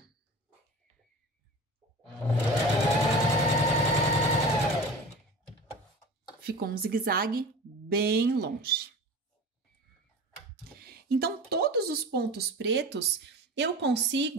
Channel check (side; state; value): both; normal; correlation 0.35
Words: Ficou um zigue-zague bem longe. Então, todos os pontos pretos, eu